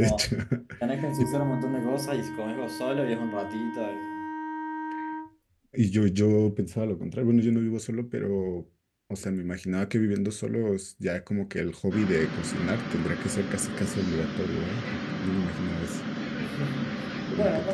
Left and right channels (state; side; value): identical; both; correlation 1.00